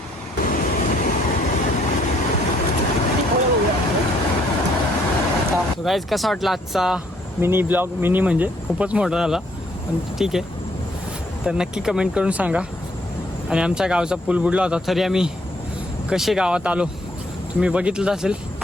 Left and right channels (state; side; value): normal; both; correlation 0.67